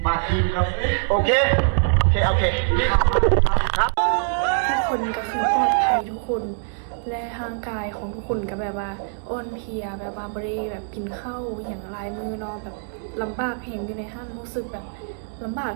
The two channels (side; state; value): left; silent; 63 dB below the other